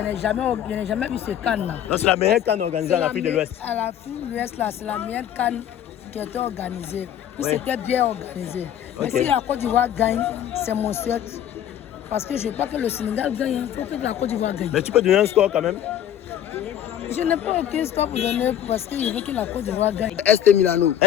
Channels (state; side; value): quieter; right; 10.4 dB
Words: jamais vu ce CAN-là. Non, c'est la meilleure canne organisée en Afrique de l'Ouest. À l'Afrique de l'Ouest, là, c'est la meilleure CAN qui a été organisée. Puis Oui. c'était bien organisé. Mais Ok. si la Côte d'Ivoire gagne, c'est mon souhait. Parce que je ne veux pas que le Sénégal gagne, il faut que la Côte d'Ivoire gagne. Mais tu peux donner un score quand même? Je n'ai pas aucun score pour donner parce que je veux que la Côte d'Ivoire gagne. ST Milano.